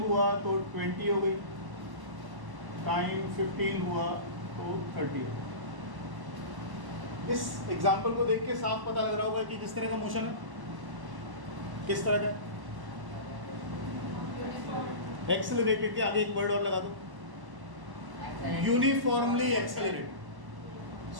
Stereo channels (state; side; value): late; left; 1.1 ms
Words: तो 20 हो गई। टाइम 15 हुआ तो 30 हो गई। इस एग्जाम्पल को देख के साफ पता लग रहा होगा कि किस तरह का मोशन है, किस तरह का। एक्सेलरेटेड के आगे एक वर्ड और लगा दो, यूनिफॉर्मली एक्सेलरेटेड।